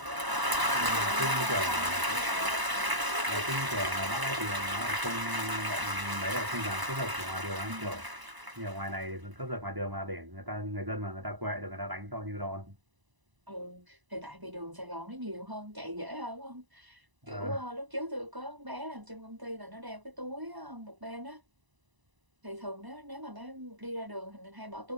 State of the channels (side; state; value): left; late; 1.0 ms